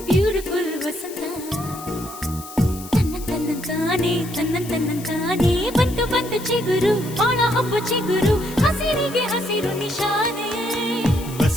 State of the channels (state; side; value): noise; left; hiss, 15 dB below the sound